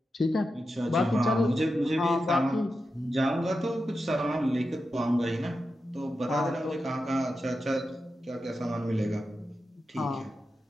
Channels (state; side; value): normal; both; correlation 0.90